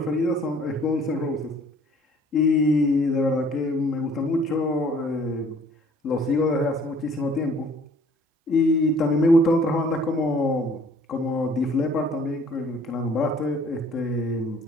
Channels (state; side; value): normal; both; correlation 0.56